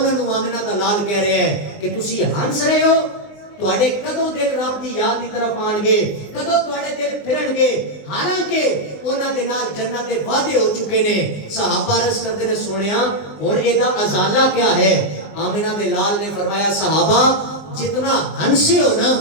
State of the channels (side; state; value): right; late; 19 ms